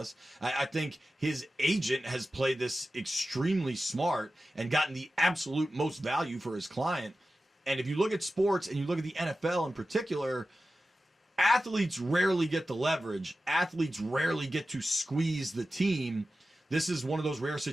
I think his agent has played this extremely smart and gotten the absolute most value for his client. And if you look at sports and you look at the NFL in particular, athletes rarely get the leverage. Athletes rarely get to squeeze the team. This is one of those rare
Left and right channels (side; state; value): both; normal; correlation 0.94